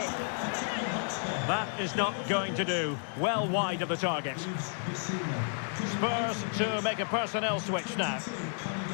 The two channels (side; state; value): right; silent; 57 dB below the other